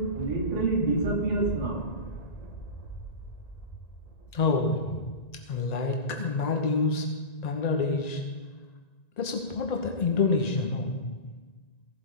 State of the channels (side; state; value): right; late; 1.9 ms